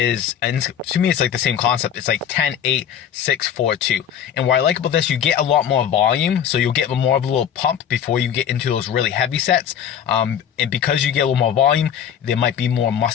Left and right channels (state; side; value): quieter; right; 9.0 dB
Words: to me it's like the same concept. It's like 10, 8, 6, 4, 2. And what I like about this, you get a lot more volume, so you'll get more of a little pump before you get into those really heavy sets. And because you get a little more volume, there might be more